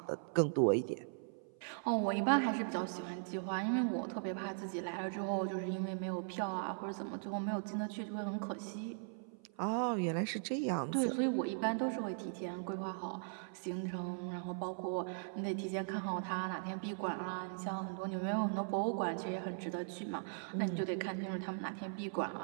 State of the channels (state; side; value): silent; left; 52 dB below the other